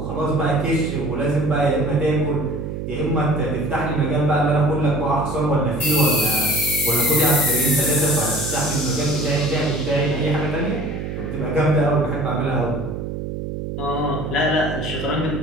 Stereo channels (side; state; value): right; noise; hum, 6 dB below the sound